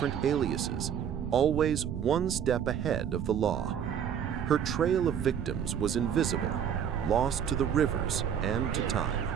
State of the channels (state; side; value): quieter; left; 8.5 dB